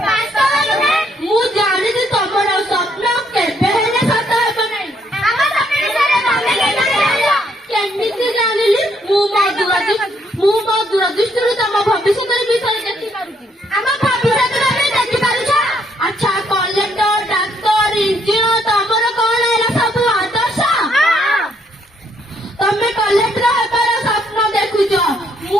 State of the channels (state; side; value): normal; both; correlation 0.71